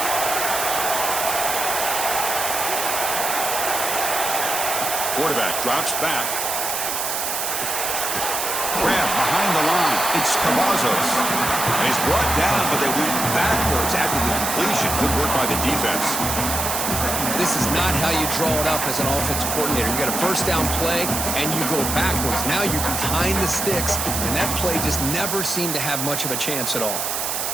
Quarterback drops back. Grab behind the line. It's Cavazos. And he's brought down, but they went backwards after the completion. Good work by the defense. This is not how you draw it up as an offensive coordinator. You got a first down play, and you go backwards. Now you're behind the sticks, and that play just never seemed to have much of a chance at all.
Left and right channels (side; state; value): right; noise; hiss, 1 dB below the sound